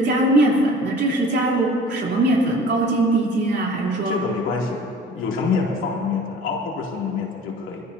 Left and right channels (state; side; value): normal; both; correlation 0.45